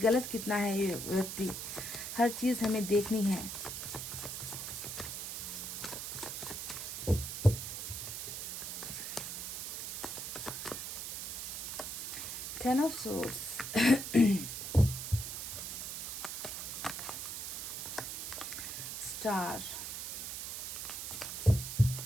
कितना है ये व्यक्ति, हर चीज हमें देखनी है। Ten of swords, star,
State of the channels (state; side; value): noise; right; hiss, 5 dB below the sound